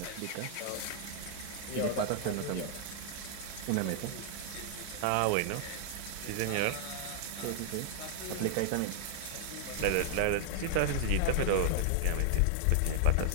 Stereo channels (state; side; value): different; both; correlation -0.01